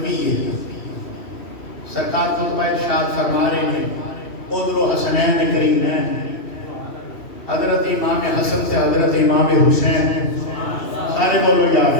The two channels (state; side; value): late; right; 2.7 ms